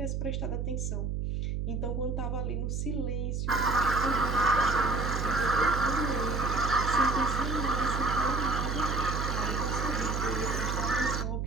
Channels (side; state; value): right; noise; hum, 1 dB below the sound